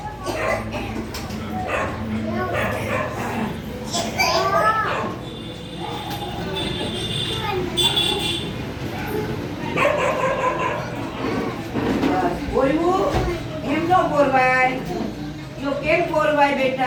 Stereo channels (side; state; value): both; identical; correlation 1.00